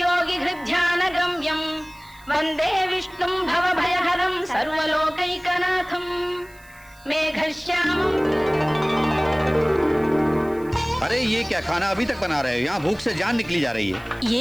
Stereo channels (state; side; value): noise; right; hiss, 27 dB below the sound